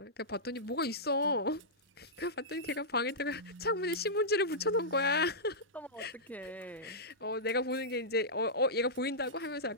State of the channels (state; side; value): normal; both; correlation -0.13